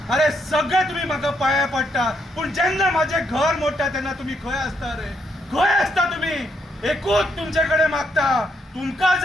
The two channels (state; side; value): normal; both; correlation 0.76